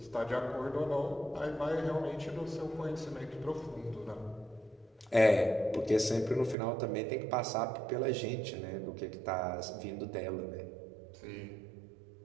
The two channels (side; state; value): left; drops out; at 6.6 s